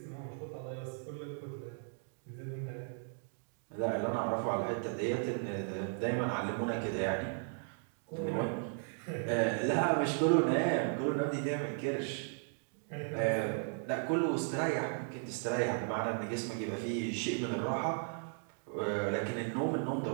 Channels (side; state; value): left; silent; 54 dB below the other